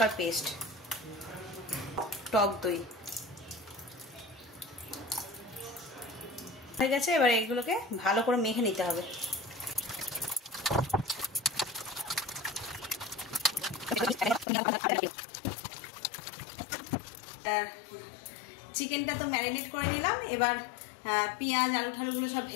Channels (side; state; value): right; drops out; at 14.5 s